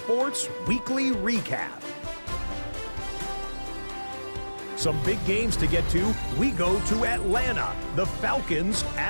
Weekly Recap. Some big games to get to. We go to Atlanta. The Falcons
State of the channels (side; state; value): both; inverted; correlation -1.00